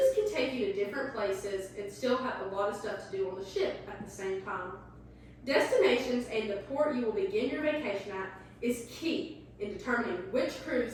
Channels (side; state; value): both; identical; correlation 1.00